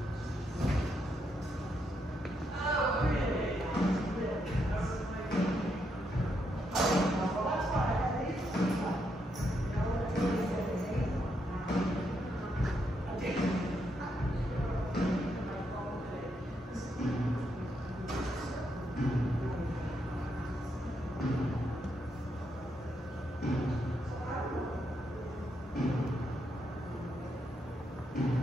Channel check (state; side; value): normal; both; correlation 0.79